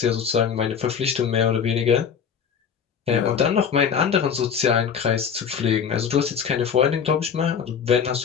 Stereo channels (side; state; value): right; quieter; 7.2 dB